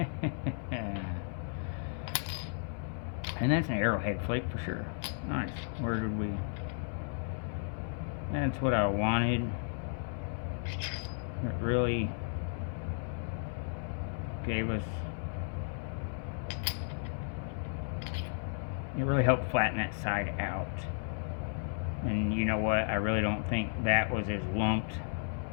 And that's an arrowhead flake for sure. Nice. Where did we... That's what I wanted. It really gave us, it really helped flatten that side out. And you know what, I really don't think that was as lumped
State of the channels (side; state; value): right; silent; 55 dB below the other